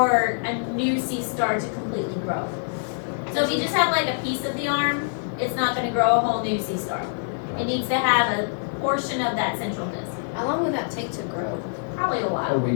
a new sea star to completely grow. So if you just have like a piece of the arm, it's not going to grow a whole new sea star. It needs to have a portion of that central disc. How long would that take to grow? Probably a A while.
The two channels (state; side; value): silent; right; digital silence